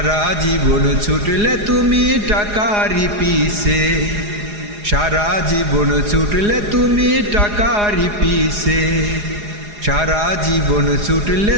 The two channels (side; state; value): left; late; 4.8 ms